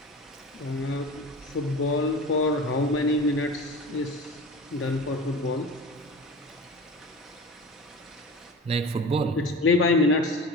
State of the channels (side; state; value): both; normal; correlation 0.34